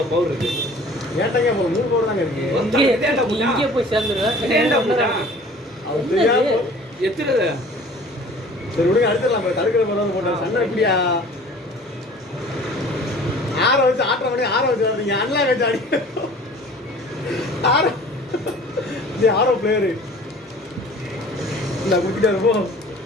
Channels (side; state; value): both; normal; correlation 0.47